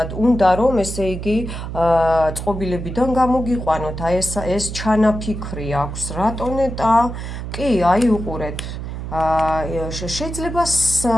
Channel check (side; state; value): right; noise; hum, 7 dB below the sound